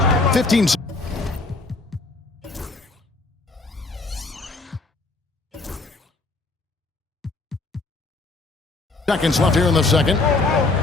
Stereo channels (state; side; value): quieter; right; 3.4 dB